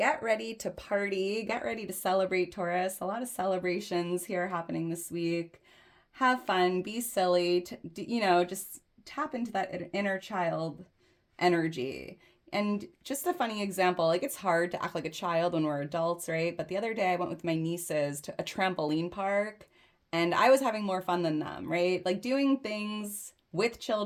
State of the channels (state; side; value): identical; both; correlation 1.00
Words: ready to party, get ready to celebrate, Taurus. A lot of celebrations here happening this week. Have fun, be silly, just tap into that inner child energy. And just a funny example, like it's hard to act like a child when we're adults, right? But the other day I went with my nieces to a trampoline park and I was having more fun than them, right? Like doing things with